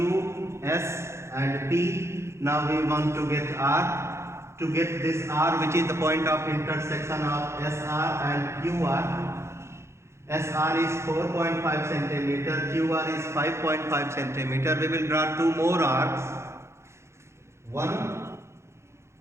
S and P. Now we want to get R. To get this R, which is the point of intersection of SR and QR. SR is 4.5 centimeter, QR is 5.5 centimeter. We will draw two more arcs. One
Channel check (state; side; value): late; left; 0.13 ms